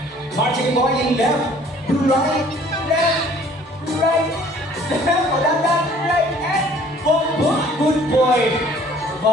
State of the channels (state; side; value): normal; both; correlation 0.55